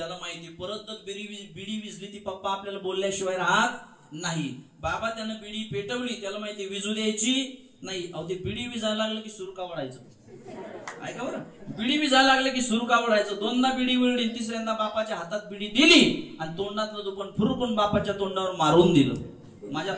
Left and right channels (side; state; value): both; identical; correlation 1.00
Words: माहिती परत बिडी विजली ती पप्पा आपल्याला बोलल्याशिवाय राहत नाही. बाबा त्यानं बिडी पेटवली, त्याला माहिती विजू द्यायची नाही. अहो ते बिडी विजायला लागलं की सुरू का वडायचं, ऐका बरं, बिडी विजायला लागलं की सुरू का वडायचं. दोनदा बिडी विळली, तिसऱ्यांदा बापाच्या हातात बिडी दिली आणि तोंडातलं दुपण फुरकून बापाच्या तोंडावर मारून दिलं. माझ्या